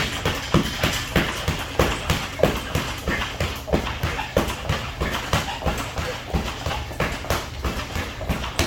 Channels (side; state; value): both; identical; correlation 1.00